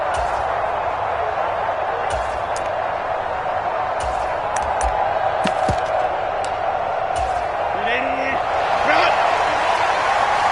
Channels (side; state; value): both; identical; correlation 1.00